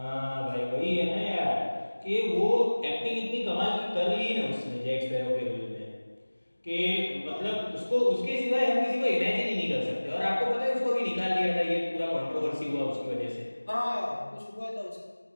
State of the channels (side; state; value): both; inverted; correlation -1.00